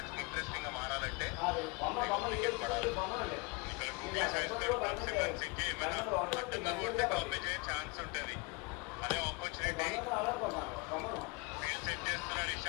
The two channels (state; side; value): quieter; right; 27.7 dB